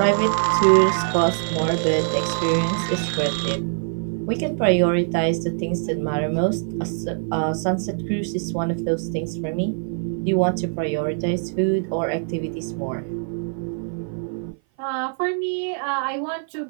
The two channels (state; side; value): silent; left; 56 dB below the other